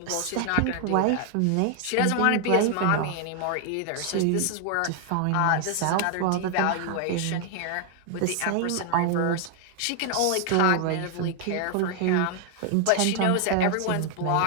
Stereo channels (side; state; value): both; different; correlation 0.00